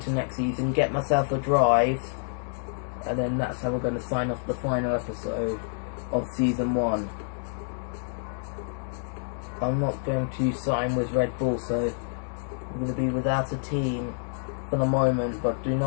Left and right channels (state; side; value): silent; right; digital silence